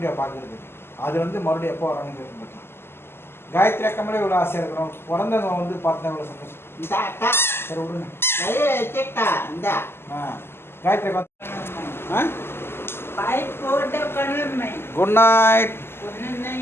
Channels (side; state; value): right; late; 0.12 ms